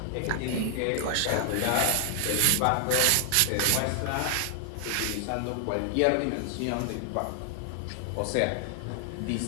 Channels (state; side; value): different; both; correlation 0.00